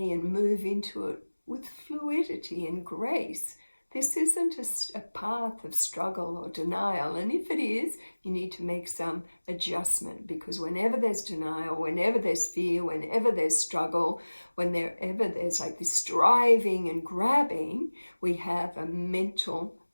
and move into it with fluidity and grace. This isn't a path of struggle or denial, and if it is, you need to make some adjustment, because whenever there's denial, whenever there's fear, whenever there's struggle, whenever there's like this striving and grabbing, we have a mental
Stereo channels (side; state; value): both; inverted; correlation -1.00